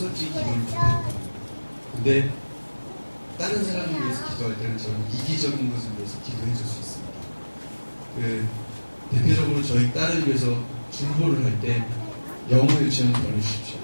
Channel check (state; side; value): inverted; both; correlation -1.00